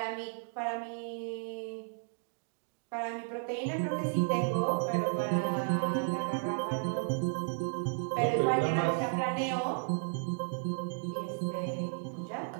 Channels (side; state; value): left; silent; 55 dB below the other